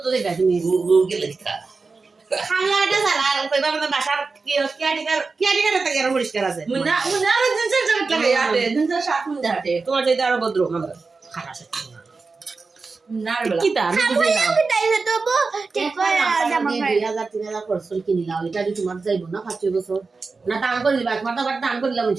যাইবা তুমি গুগল লেখা খালা এটা সালা কইবা মানে বাসার কি আটিকার একটা গের পরিষ্কার আছে মুন্না আর জিন্সের জ্যাকেট লাগে আটে জিন্সের শার্ট মুন্না হাটে তোমার চাইতে আরো ভদ্র আমরা খারাপ আছে না রে বলা কি তা আমি বুঝি না আমি তাই তো ঠিক করে জামা পাই 2000-3000 খরচ করে কিনিলাম এটা যদি তোমার যাইব না 5 বছর না দান করে দিবা তোমার তো আবার দান করে দিলাম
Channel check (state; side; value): quieter; left; 4.2 dB